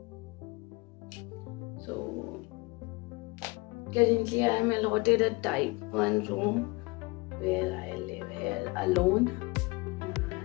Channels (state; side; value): quieter; right; 25.7 dB